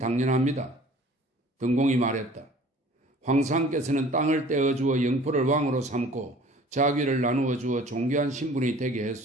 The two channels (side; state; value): both; normal; correlation 0.49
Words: 등공이 말했다. 황상께서는 땅을 떼어주어 영포를 왕으로 삼고 자귀를 나누어 주어 존귀한 신분이 되게